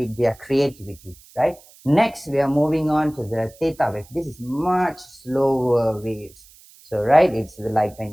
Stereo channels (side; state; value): right; noise; hiss, 25 dB below the sound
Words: their creativity, right? Next, we are moving on to the theta wave. This is much slower waves. So, right, it's like